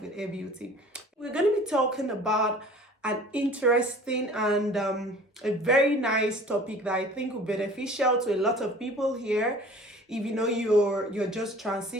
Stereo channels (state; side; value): normal; both; correlation 0.46